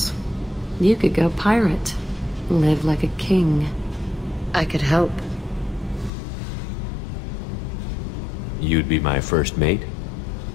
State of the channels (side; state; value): right; drops out; at 6.1 s